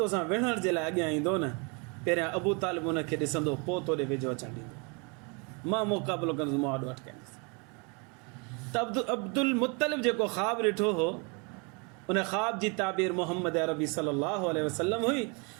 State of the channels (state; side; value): quieter; left; 32.3 dB